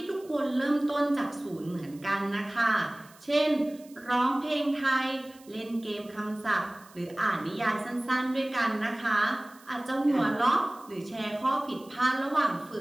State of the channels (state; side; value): noise; right; hiss, 25 dB below the sound